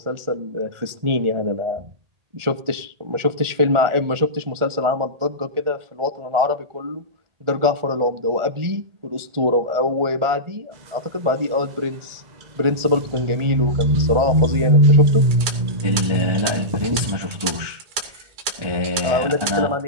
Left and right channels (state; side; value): late; left; 1.8 ms